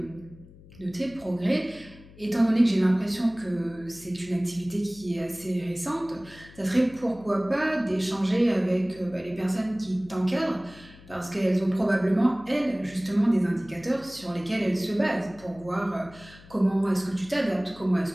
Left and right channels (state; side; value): noise; left; hum, 21 dB below the sound